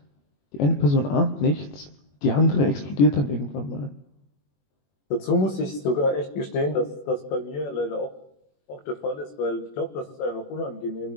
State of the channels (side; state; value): right; late; 21 ms